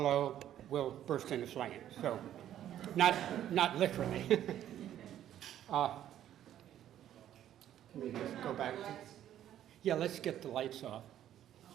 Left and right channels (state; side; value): quieter; left; 11.4 dB